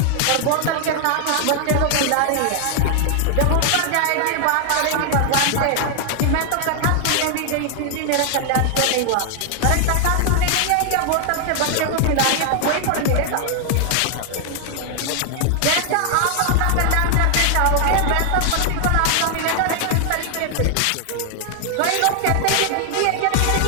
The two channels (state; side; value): different; both; correlation 0.00